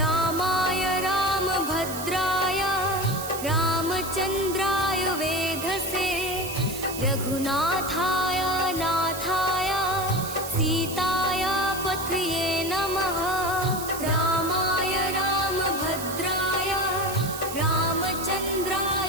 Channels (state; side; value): noise; right; hiss, 9 dB below the sound